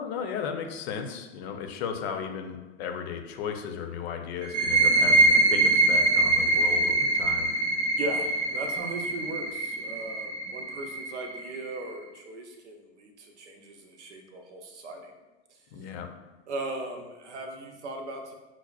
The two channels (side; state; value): both; normal; correlation -0.06